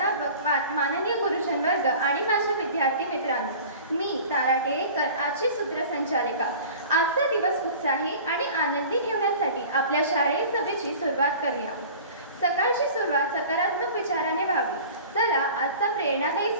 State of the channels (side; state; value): both; inverted; correlation -0.41